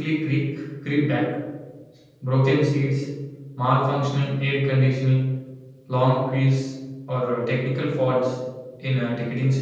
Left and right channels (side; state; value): both; identical; correlation 1.00